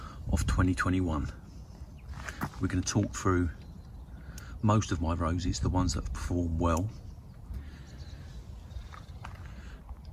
of 2021. We're going to talk through most of my roses, the ones that perform well,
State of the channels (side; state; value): both; identical; correlation 1.00